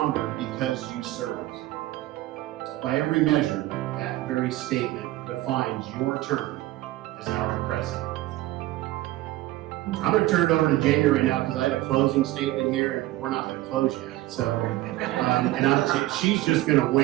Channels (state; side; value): quieter; left; 16.7 dB